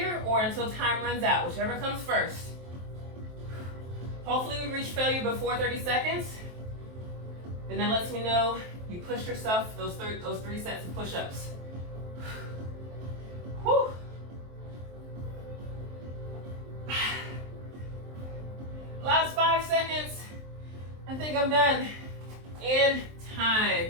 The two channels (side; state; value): left; late; 23 ms